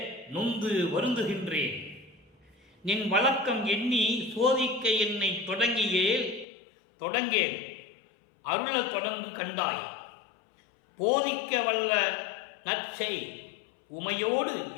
நொந்து வருந்துகின்றேன். நின் வழக்கம் எண்ணி சோதிக்க என்னை தொடங்கேன் அருள தொடங்கு கண்டாய், போதிக்க வல்ல நற்சை உமையோடு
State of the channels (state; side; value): drops out; right; at 6.5 s